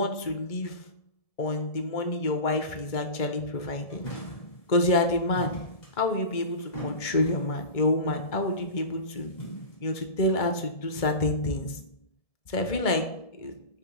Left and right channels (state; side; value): late; right; 1.7 ms